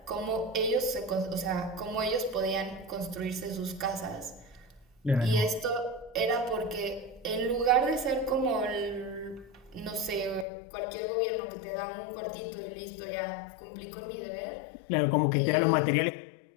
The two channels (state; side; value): drops out; right; at 10.5 s